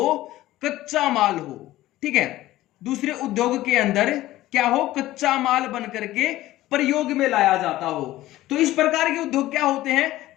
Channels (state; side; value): quieter; right; 15.9 dB